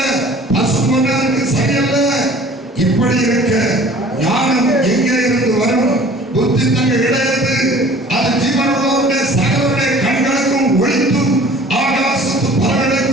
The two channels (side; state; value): both; normal; correlation 0.49